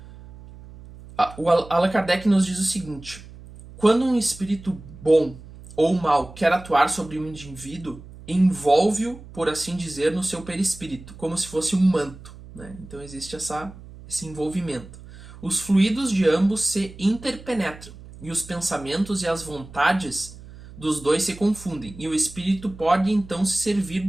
O Allan Kardec nos diz o seguinte: quando um espírito bom ou mal quer atuar sobre um indivíduo, envolve-o, por assim dizer, no seu perispírito, como se fosse um manto, né? Então existe esse envolvimento. Os fluidos de ambos se interpenetram, e os pensamentos e as vontades dos dois se confundem, e o espírito pode então se servir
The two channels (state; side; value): noise; right; hum, 17 dB below the sound